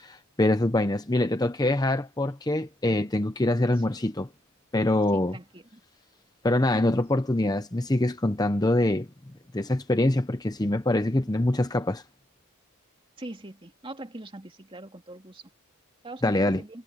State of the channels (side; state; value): both; normal; correlation 0.80